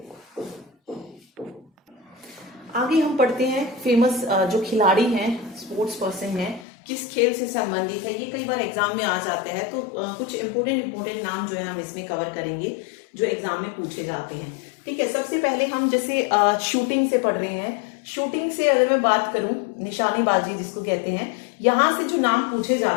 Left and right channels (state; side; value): drops out; right; at 6.7 s